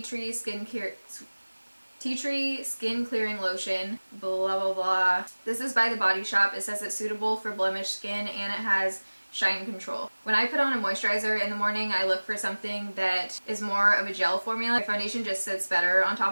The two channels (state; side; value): inverted; both; correlation -1.00